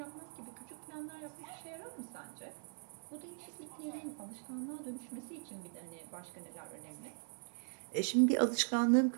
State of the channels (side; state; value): left; silent; digital silence